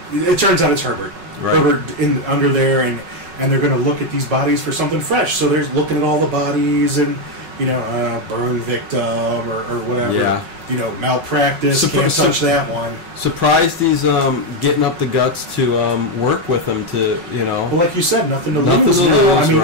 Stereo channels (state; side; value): late; left; 5.4 ms